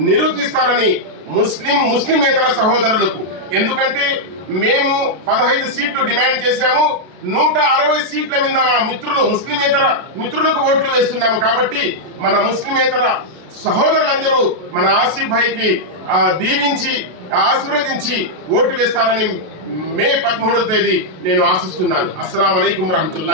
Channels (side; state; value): left; late; 33 ms